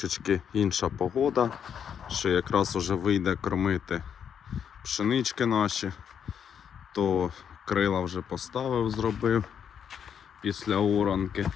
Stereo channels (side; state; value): right; quieter; 8.0 dB